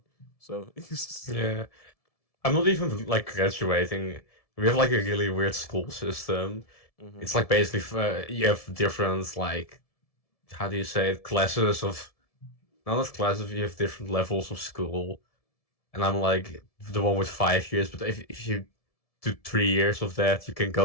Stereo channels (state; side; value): late; right; 1.7 ms